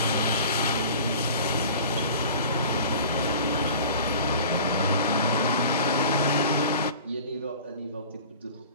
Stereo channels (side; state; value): both; inverted; correlation -0.42